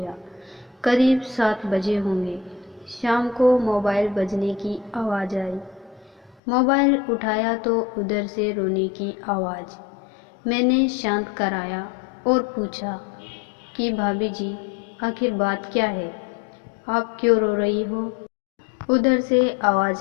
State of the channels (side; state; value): right; drops out; at 6.4 s